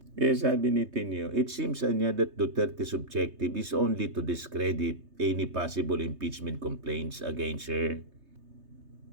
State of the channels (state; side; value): late; left; 3.2 ms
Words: Kaya sabi ni Tino, it seems niya that Duterte's objective is only to discredit any possible impeachment complaints against her.